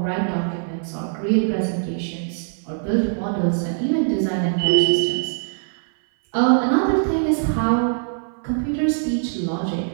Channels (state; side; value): silent; left; 60 dB below the other